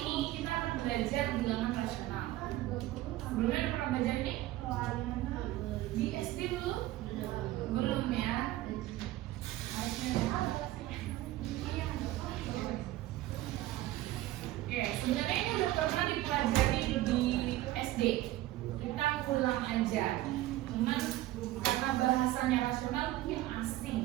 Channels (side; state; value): left; quieter; 15.9 dB